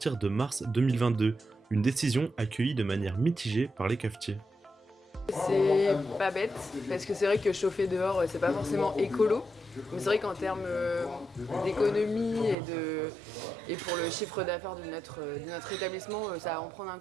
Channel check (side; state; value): left; drops out; at 12.6 s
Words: de mars 2022, une décision accueillie de manière mitigée par les cafetiers. C'est pas bête, parce que c'est vrai que chauffer dehors, c'est pas forcément écolo. Mais c'est vrai qu'en termes d'économie et pour le chiffre d'affaires de notre établissement, ça va en prendre un